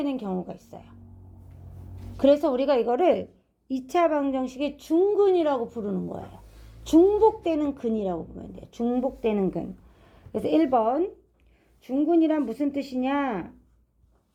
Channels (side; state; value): both; identical; correlation 1.00